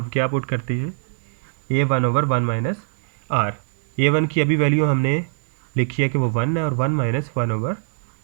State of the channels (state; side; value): silent; left; digital silence